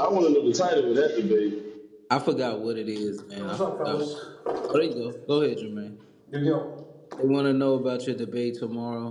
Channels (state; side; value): identical; both; correlation 1.00